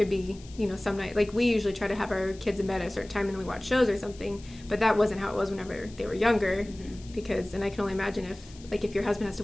be, some night, like we usually try to have our kids in bed at a certain time and then we watch shows or something, but that wasn't how it was whenever they were younger because, and I can only imagine if your husband has to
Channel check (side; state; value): left; noise; hiss, 22 dB below the sound